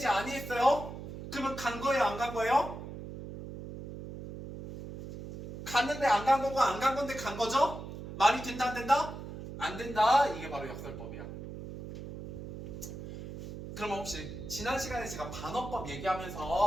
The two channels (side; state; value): right; noise; hum, 10 dB below the sound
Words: 아니했어요. 그러면 간 거예요? 안 간 거예요? 갔는데 안 간 거고 안 간 건데 간 거죠? 말이 된다 안 된다? 안 된다. 이게 바로 역설법이야. 그러면 혹시 지난 시간에 제가 반어법